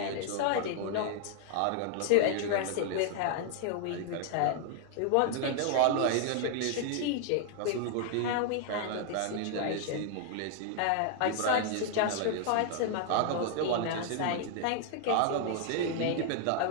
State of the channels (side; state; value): both; different; correlation 0.00